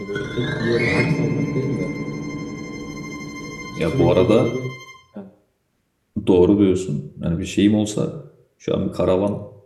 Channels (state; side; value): identical; both; correlation 1.00